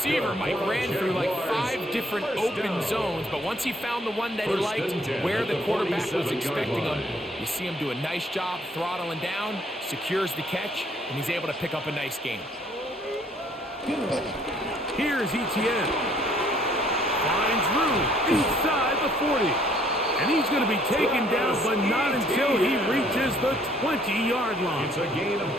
Mike, ran through like 5 different open zones, but once he found the one that he liked, where the quarterback was expecting him, you see him do a nice job throttling down, secures the catch, and he's able to pick up a nice gain. Here's ETN. Finds room inside the 40. And he's going to be taken down, but not until he reaches the 20-yard line. It's a gain of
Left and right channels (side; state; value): both; normal; correlation 0.63